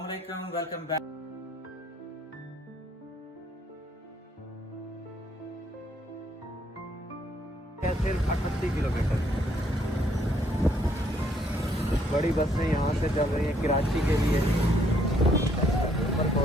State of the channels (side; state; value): both; normal; correlation 0.68